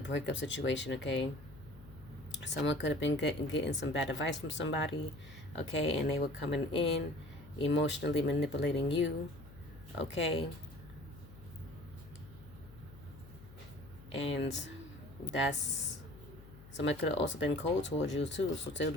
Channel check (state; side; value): noise; left; hum, 18 dB below the sound